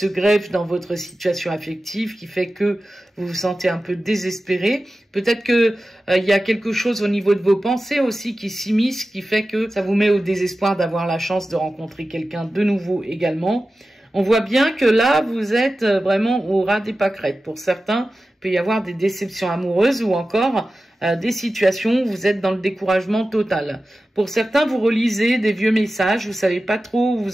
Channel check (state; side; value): normal; both; correlation 0.94